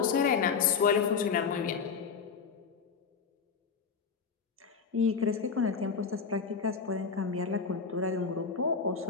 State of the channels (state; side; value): quieter; right; 5.7 dB